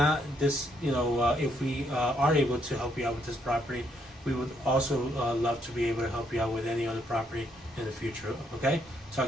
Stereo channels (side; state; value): both; normal; correlation 0.73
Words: this. If we are able to help you out with this property, we would also love to be able to help you out with any other property in the future. Okay,